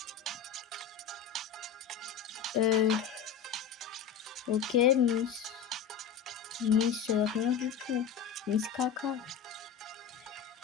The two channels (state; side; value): quieter; right; 7.5 dB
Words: Ok, Miss rien du tout. Miss caca.